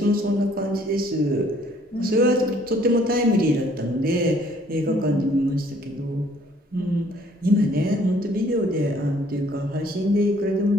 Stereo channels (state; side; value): normal; both; correlation 0.61